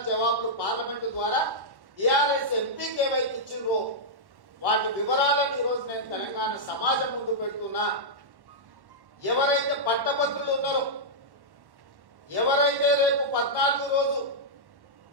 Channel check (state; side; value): late; left; 1.1 ms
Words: జవాబులు పార్లమెంటు ద్వారా టిఆర్ఎస్ ఎంపీకి ఏవైతే ఇచ్చిండ్రో వాటి వివరాలను ఈరోజు నేను తెలంగాణ సమాజం ముందు పెడుతున్నా. ఎవరైతే పట్టభద్రులు ఉన్నారో, ఎవరైతే రేపు 14 రోజు